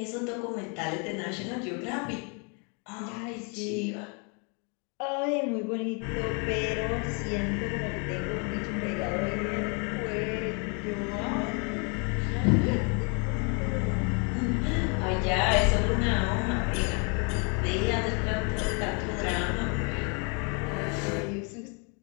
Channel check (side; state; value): right; quieter; 35.7 dB